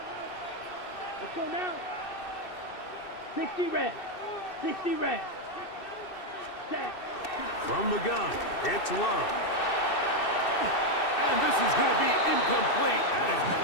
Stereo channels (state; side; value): late; right; 2.6 ms